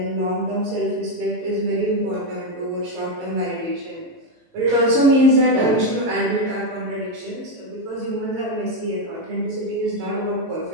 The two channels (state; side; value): late; left; 18 ms